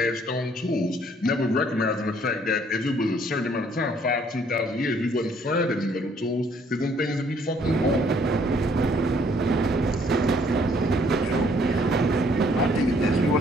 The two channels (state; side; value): normal; both; correlation 0.64